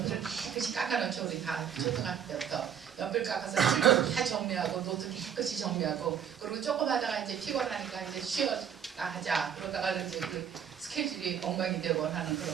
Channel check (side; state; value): left; quieter; 8.4 dB